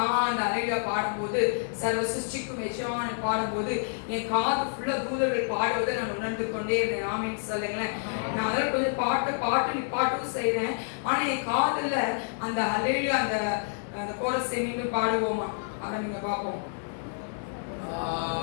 அந்த ஹல்லேலூயா பாடும்போது, சர்வ சிருஷ்டிக்கும் எஜமானனை பாடும்போது என் காது ஃபுல்லா தூதர்கள் பாடுவதை நான் உணர்ந்து கொண்டே இருந்தேன். ஆமென் சொல்லுங்களேன். நான் அதில் கொஞ்சம் பாட்டு செய்கிறேன். ஆனால் என் காதுல அந்த ஹல்லேலூயா அந்த கோரஸை மீண்டும் பாடுவோமா? அதை நீங்க பார்ப்போம்.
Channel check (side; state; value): right; silent; 59 dB below the other